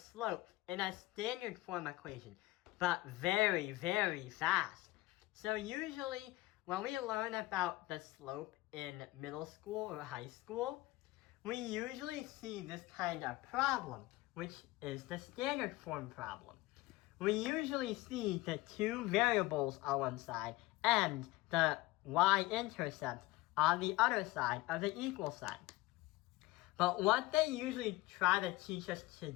in a standard form equation, but very, very fast. So usually, when we learn about the slope in middle school or high school, we usually see this kind of problem, which is the standard form problem. We usually see the two variables on one side and the y-intercept on the other side of the equal sign. But what they usually try to teach us to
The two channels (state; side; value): quieter; right; 19.1 dB